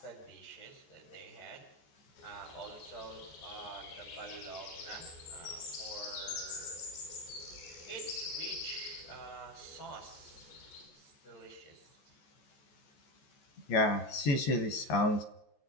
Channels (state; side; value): late; right; 14 ms